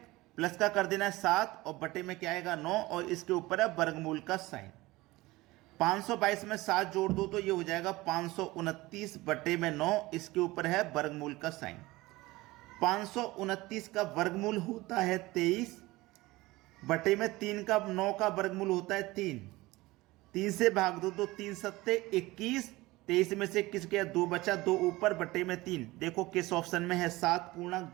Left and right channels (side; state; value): left; quieter; 20.0 dB